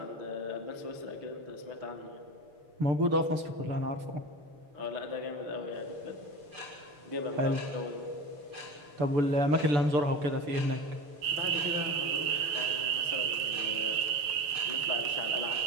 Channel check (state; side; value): late; left; 6.8 ms